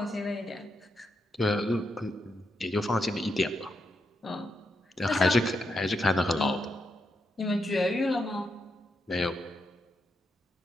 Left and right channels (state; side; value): normal; both; correlation 0.83